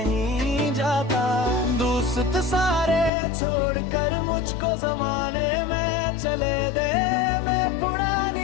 जाता। दोस्त सारे छोड़कर मुझको जमाने में चले दे, मैं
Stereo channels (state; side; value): drops out; right; at 3.1 s